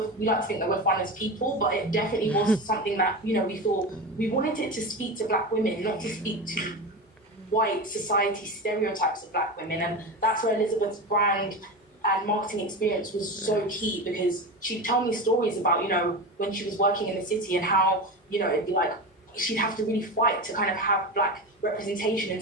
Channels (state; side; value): normal; both; correlation 0.24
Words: we like to think that we're fun as people, but it definitely was something that, we thought we wanted it to speak to black women, not to speak to white society stereotypes of black women. And that's where Elizabeth's brand and marketing experience was so key, because she'd tell me stories about, when she was working in the city, and how, it'd be like, she'd have to really fight to kind of have black representation in